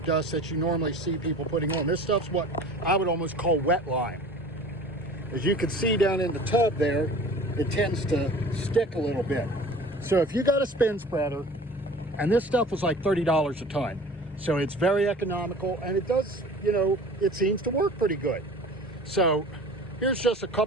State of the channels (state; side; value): normal; both; correlation 0.43